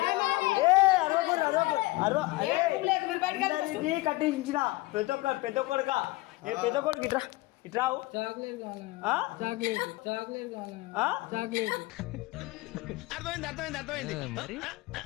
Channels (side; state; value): right; quieter; 20.7 dB